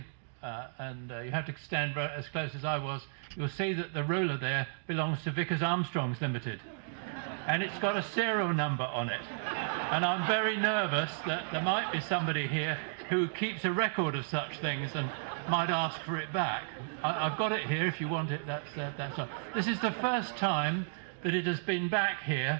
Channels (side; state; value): left; silent; digital silence